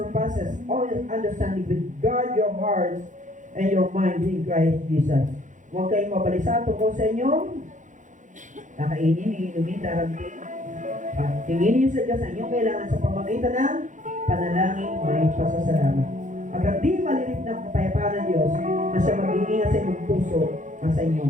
all understanding, will guard your hearts and your minds in Christ Jesus. Huwag kayong mabalisa tungkol sa inyong kakainin, iinumin, darabin. Tingin niyo sa Diyos ang inyong kailangan sa pamamagitan ng panalangin, may pasasalamat. At ang di malilit na kapayapaan ng Diyos na siya mag-iingat sa inyong puso at sa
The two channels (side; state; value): left; late; 0.36 ms